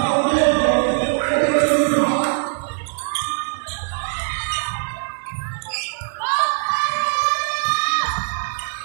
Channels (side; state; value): left; silent; 65 dB below the other